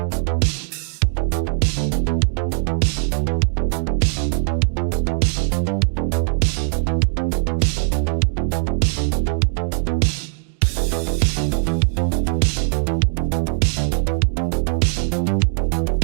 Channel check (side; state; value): left; silent; 65 dB below the other